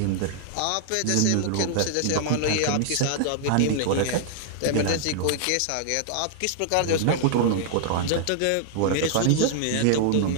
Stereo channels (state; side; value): different; both; correlation -0.01